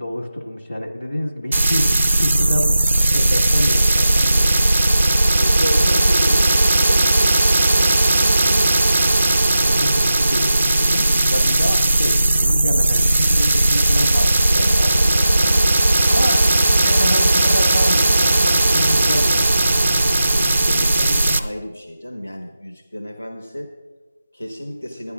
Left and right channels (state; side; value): inverted; both; correlation -0.91